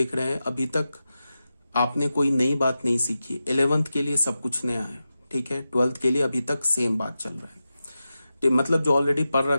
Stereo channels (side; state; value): both; inverted; correlation -0.92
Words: रहे हैं, अभी तक आपने कोई नई बात नहीं सीखी। 11th के लिए सब कुछ नया है, ठीक है, 12th के लिए अभी तक सेम बात चल रहा है, मतलब जो ऑलरेडी पढ़